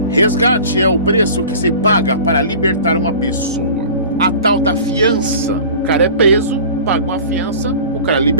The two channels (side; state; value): both; inverted; correlation -0.40